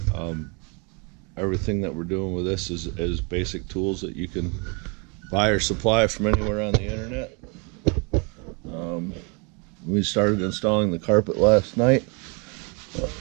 Everything that we're doing with this is basic tools that you can buy or supply from anywhere on the internet. We started installing the carpet last night.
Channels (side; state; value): left; quieter; 32.5 dB